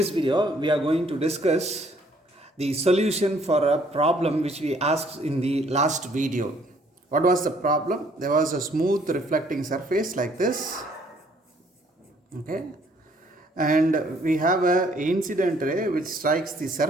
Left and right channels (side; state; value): both; normal; correlation 0.63